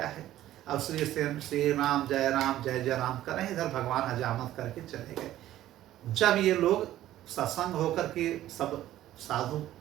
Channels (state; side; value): quieter; left; 13.6 dB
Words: है। अब श्री राम जय राम कर रहे हैं। इधर भगवान हजामत करके चले गए। जब ये लोग सत्संग होकर के सब साधु